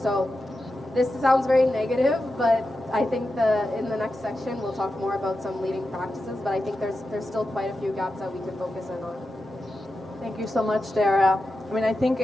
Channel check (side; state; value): both; normal; correlation 0.90